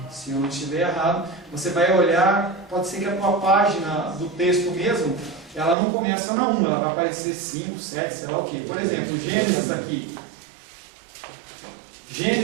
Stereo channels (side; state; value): left; drops out; at 5.8 s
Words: se eu não estiver errado, você vai olhar, pode ser que a tua página do texto mesmo, ela não começa na 1, ela vai aparecer 5, 7, sei lá o que. Por exemplo, Gênesis aqui.